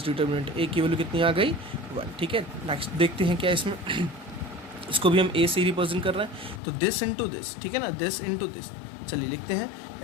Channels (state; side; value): drops out; right; at 6.6 s